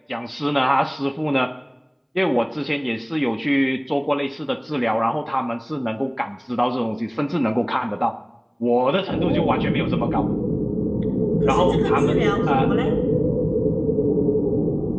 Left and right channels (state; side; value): identical; both; correlation 1.00